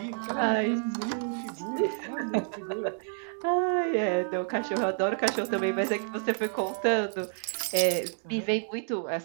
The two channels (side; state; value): left; silent; 57 dB below the other